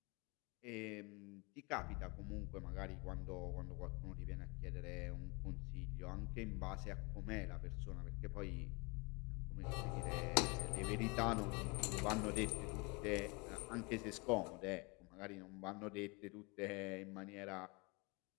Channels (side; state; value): right; quieter; 28.8 dB